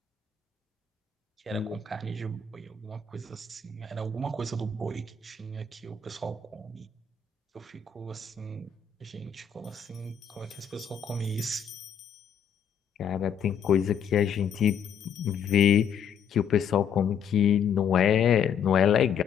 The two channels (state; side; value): quieter; right; 7.2 dB